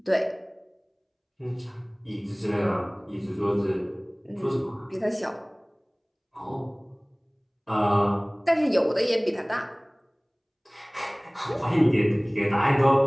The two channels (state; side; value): identical; both; correlation 1.00